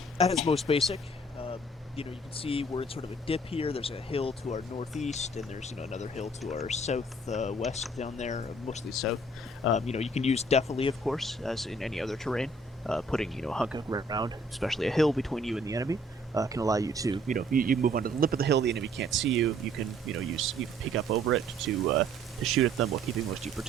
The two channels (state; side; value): normal; both; correlation 0.59